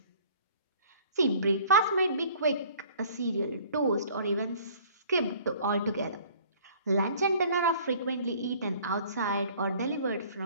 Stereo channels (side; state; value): both; inverted; correlation -0.52